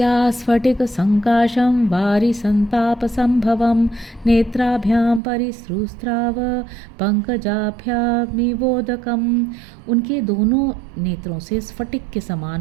स्फटिक संकाशं वारि संताप संभवं नेत्राभ्यां परिसृस्राव पंकजाभ्यामिवोदकम। उनके दोनों नेत्रों से स्फटिक के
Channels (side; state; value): left; drops out; at 5.2 s